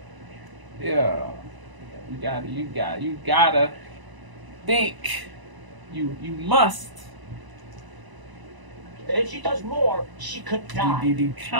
you gotta think. You must. And if she does more, she could die. The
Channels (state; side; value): late; left; 1.0 ms